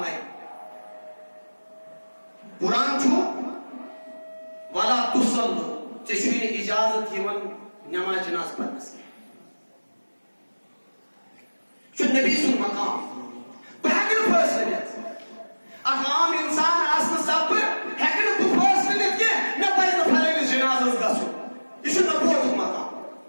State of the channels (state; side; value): inverted; both; correlation -1.00